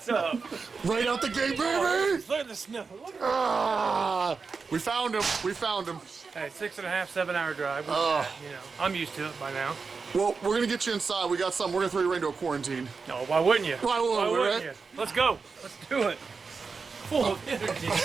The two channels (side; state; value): left; quieter; 4.9 dB